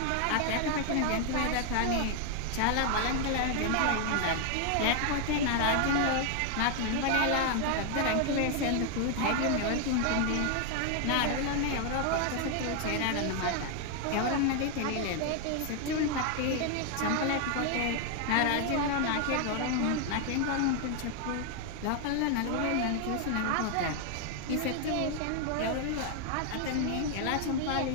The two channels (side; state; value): both; different; correlation 0.00